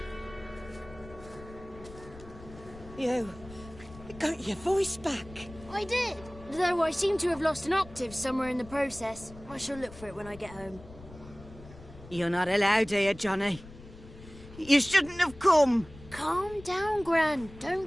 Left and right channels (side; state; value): left; noise; rumble, 18 dB below the sound